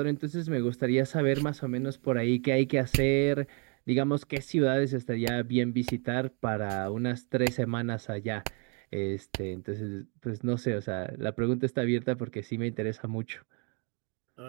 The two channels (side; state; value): left; quieter; 36.2 dB